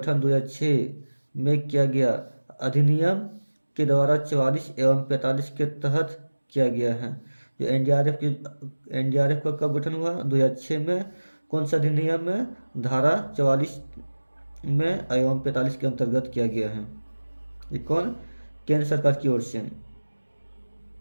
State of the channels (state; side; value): inverted; both; correlation -1.00